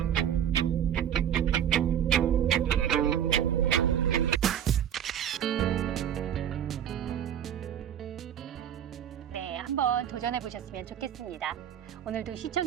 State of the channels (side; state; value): left; quieter; 9.6 dB